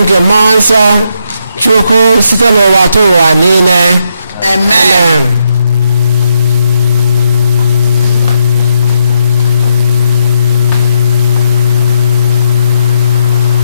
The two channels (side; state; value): both; inverted; correlation -0.80